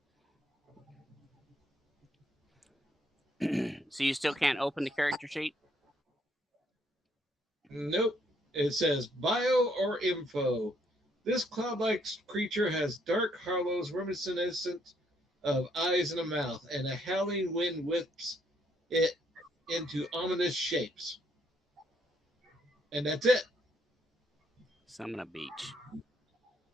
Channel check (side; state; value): both; normal; correlation 0.70